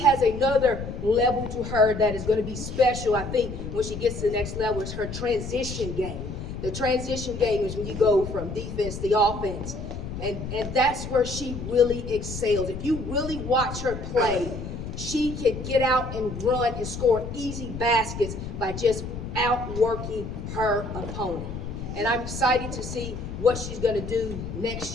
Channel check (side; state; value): left; noise; rumble, 7 dB below the sound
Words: has another level to her that is going to be special. I think when she gets to the next level is her transition game. The transition game is when you go from defense to offense. And that's where she really excels. If you really watch her play, she can get out and run and score easy baskets by just outworking her opponent. And I'm excited to see what she's going to do next